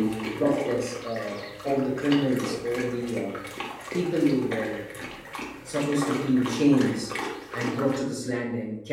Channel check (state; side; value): identical; both; correlation 1.00